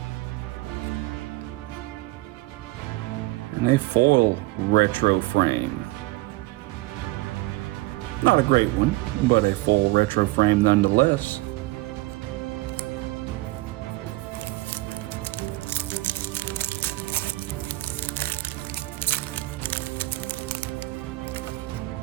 And a foil retro frame. Not a great one, but a foil retro frame nonetheless.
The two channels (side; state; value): left; quieter; 20.9 dB